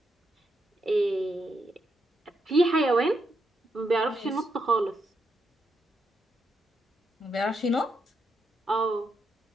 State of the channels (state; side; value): normal; both; correlation 0.81